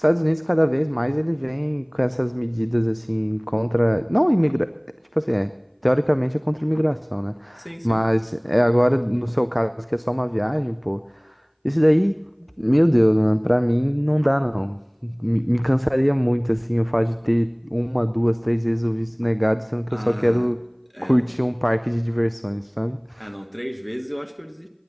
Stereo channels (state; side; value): identical; both; correlation 1.00